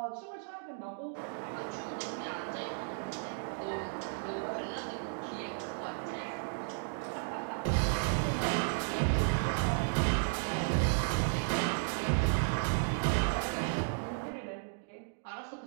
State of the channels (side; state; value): left; silent; digital silence